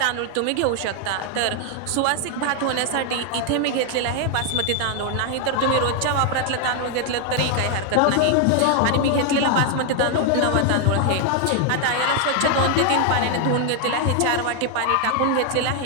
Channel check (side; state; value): both; different; correlation 0.00